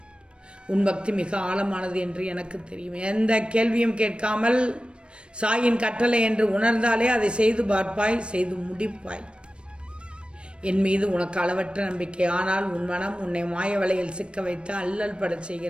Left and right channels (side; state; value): left; late; 0.057 ms